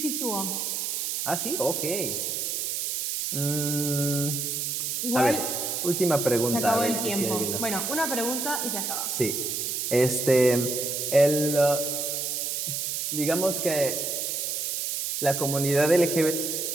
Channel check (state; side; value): noise; right; hiss, 1 dB below the sound